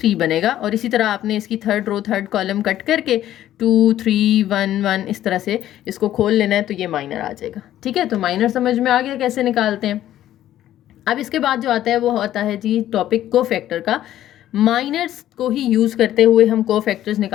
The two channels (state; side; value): quieter; right; 12.6 dB